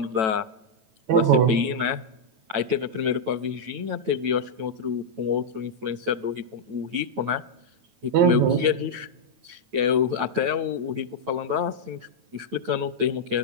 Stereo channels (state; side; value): late; left; 9.1 ms